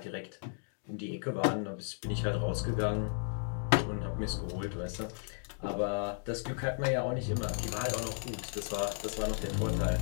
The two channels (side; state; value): right; silent; 55 dB below the other